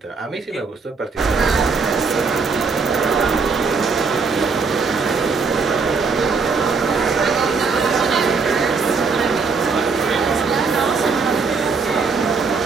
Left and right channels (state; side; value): quieter; left; 4.7 dB